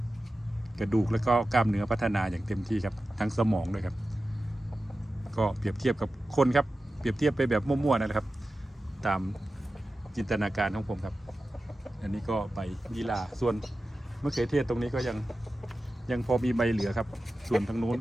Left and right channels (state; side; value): normal; both; correlation 0.94